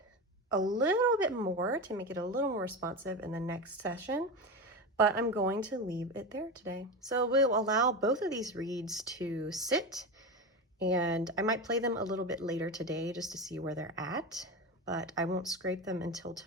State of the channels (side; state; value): both; normal; correlation 0.21